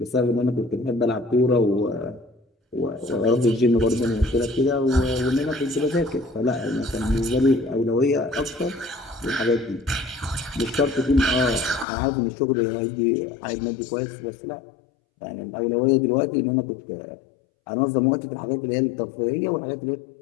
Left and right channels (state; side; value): drops out; right; at 11.9 s